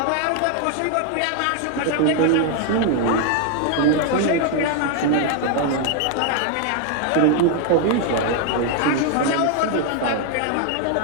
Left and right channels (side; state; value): both; different; correlation 0.00